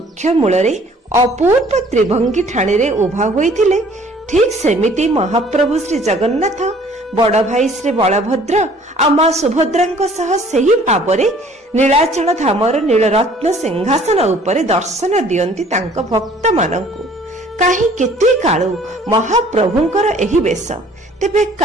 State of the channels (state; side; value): normal; both; correlation 0.55